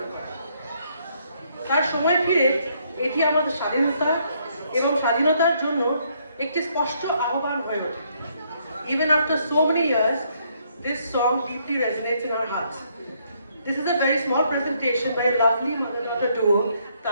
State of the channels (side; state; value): both; inverted; correlation -0.70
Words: করে। তার সময় ফিরে এটি আমাদের স্বাধীনতা এবং স্বাধীনতার জন্য একটি স্পষ্ট আহ্বান হয়ে ওঠে। Even after so many years, this song deeply resonates in our hearts. This is a very small presentation by a lovely mother-daughter duo,